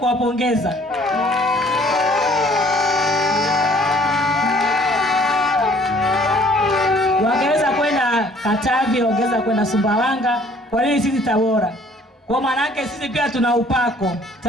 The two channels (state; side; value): normal; both; correlation 0.57